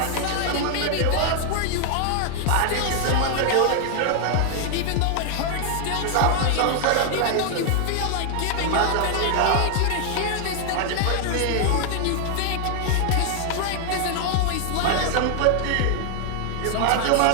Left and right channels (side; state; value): both; different; correlation 0.00